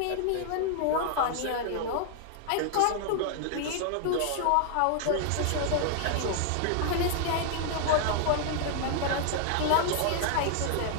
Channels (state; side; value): different; both; correlation 0.00